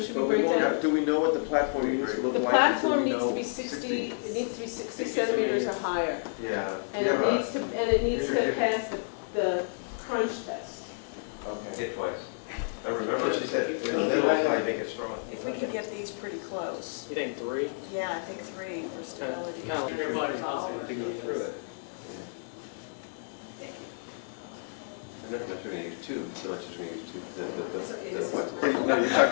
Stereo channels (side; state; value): right; silent; digital silence